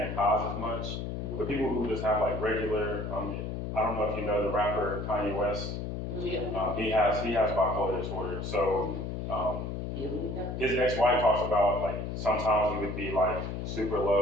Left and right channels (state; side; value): noise; left; hum, 4 dB below the sound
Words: highs as much. But people who just have like regular, I don't know if you know the rapper Kanye West. Yeah. He has bipolar disorder. So his ex-wife talks about like sometimes he would be like super